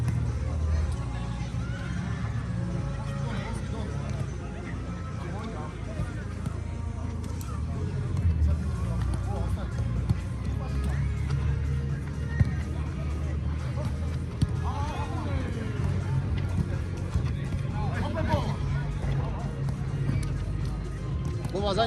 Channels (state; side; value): identical; both; correlation 1.00